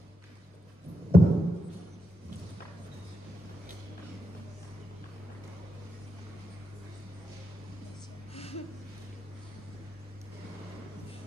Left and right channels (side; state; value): both; normal; correlation 0.84